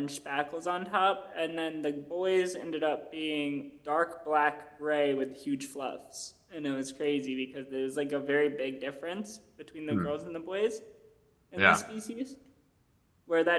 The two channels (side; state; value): both; identical; correlation 1.00